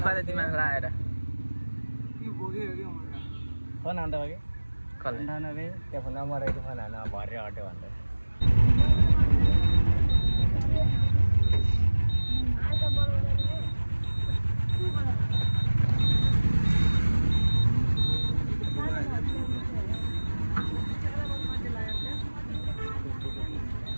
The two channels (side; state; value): both; inverted; correlation -1.00